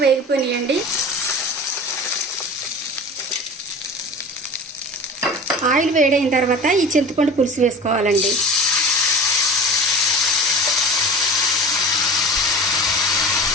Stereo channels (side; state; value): both; normal; correlation 0.35